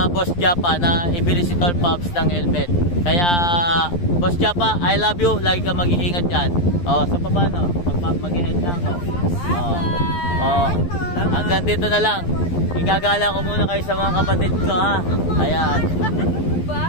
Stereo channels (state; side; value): late; right; 11 ms